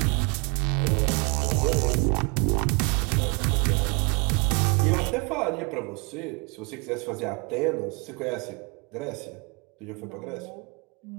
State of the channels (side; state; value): left; quieter; 30.6 dB